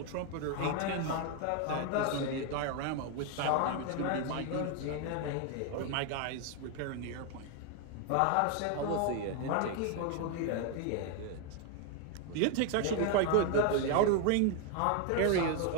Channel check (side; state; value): both; different; correlation 0.01